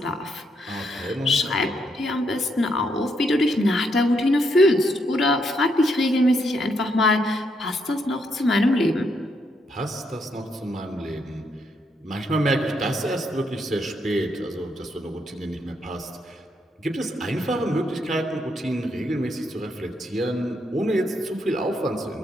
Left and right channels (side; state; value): both; normal; correlation 0.77